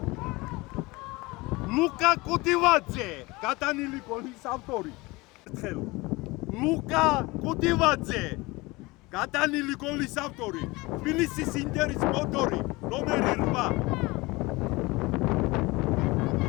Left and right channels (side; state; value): right; quieter; 23.0 dB